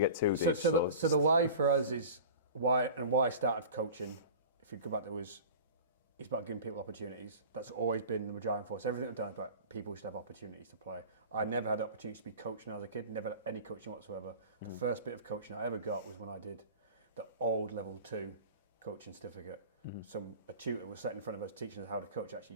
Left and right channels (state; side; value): inverted; both; correlation -0.37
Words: too deep. So the why for us is why I started coaching. If you go back to it's about giving people opportunities. That's always been the driving force. Everything I've done is about people should have opportunities to play. I never had the opportunity to be coaching as a kid. Never had any coaching whatsoever. The first bit of coaching I ever got was when I did the old level 2 coaching certificate. A tutor was sat in front of us teaching us how to coach.